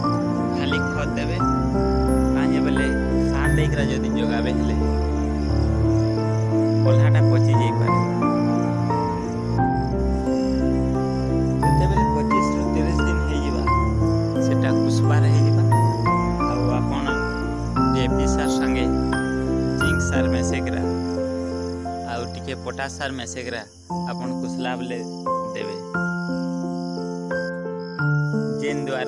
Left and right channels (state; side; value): identical; both; correlation 1.00